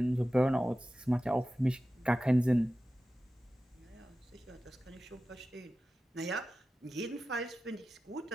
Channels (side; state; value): both; normal; correlation 0.94